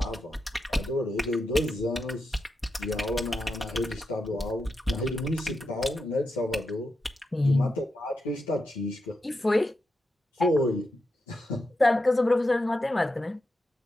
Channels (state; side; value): normal; both; correlation 0.87